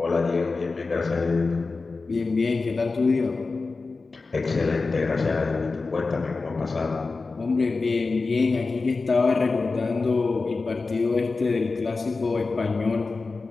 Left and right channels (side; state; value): right; quieter; 3.9 dB